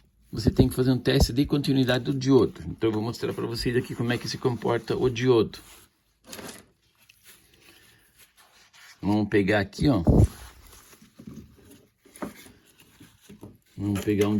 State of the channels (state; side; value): identical; both; correlation 1.00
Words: Você tem que fazer um teste de continuidade do diodo. Então eu vou mostrar para vocês aqui como é que se comporta o diodo. Vamos pegar aqui, ó. Vamos pegar um